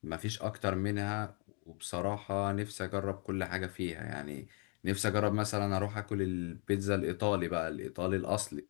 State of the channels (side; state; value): right; quieter; 37.2 dB